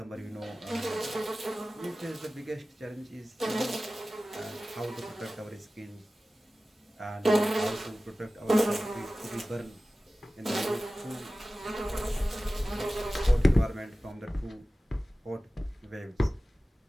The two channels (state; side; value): normal; both; correlation 0.96